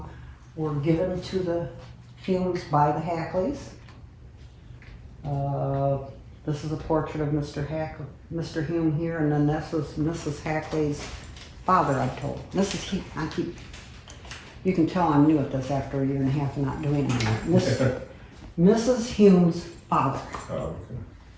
were given to the Humes by the Hackleys. This is a portrait of Mr. Hume here, and then this was Mrs. Hackley's father, I'm told. You can tell I'm new at this after a year and a half of not doing it. Mrs. Hume's father. Oh, okay.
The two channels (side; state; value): both; identical; correlation 1.00